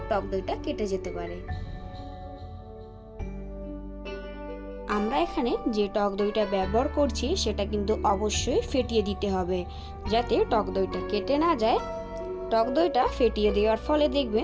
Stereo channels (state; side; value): identical; both; correlation 1.00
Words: টক দইটা কেটে যেতে পারে। আমরা এখানে যে টক দইটা ব্যবহার করছি সেটা কিন্তু অবশ্যই ফেটিয়ে দিতে হবে, যাতে টক দইটা কেটে না যায়। টক দইটা ফেটিয়ে দেওয়ার ফলে